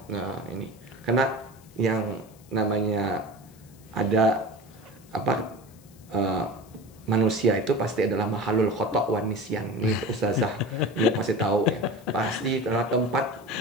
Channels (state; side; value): noise; left; hiss, 27 dB below the sound